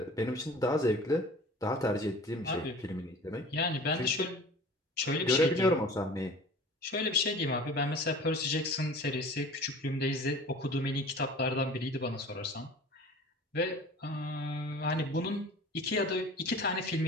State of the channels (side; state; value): both; normal; correlation 0.42